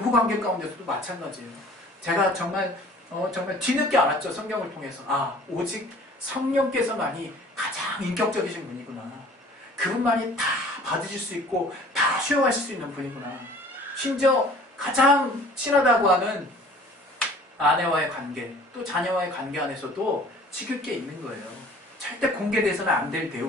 가운데서도 마찬가지예요. 제가 정말 뒤늦게 알았죠. 성경을 통해서. 오직 성령께서만이 가장 인격적이신 분이구나. 그분만이 다 받으실 수 있고 다 수용하실 수 있는 분이구나. 심지어 가장 친하다고 하는 아내와의 관계 또 자녀와의 관계 안에서도 지킬 게 있는 거예요. 절대 공개돼서는 안 될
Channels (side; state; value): both; normal; correlation 0.50